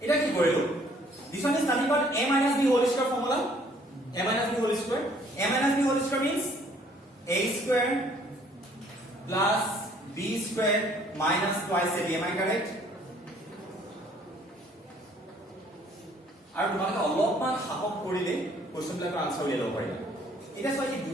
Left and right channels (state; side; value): normal; both; correlation 0.60